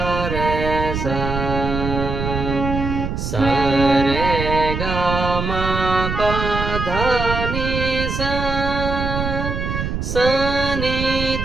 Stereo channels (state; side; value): noise; right; rumble, 3 dB below the sound